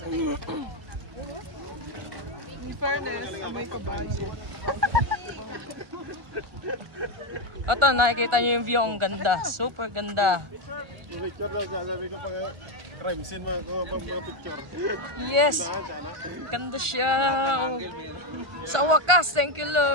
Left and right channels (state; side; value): late; left; 1.4 ms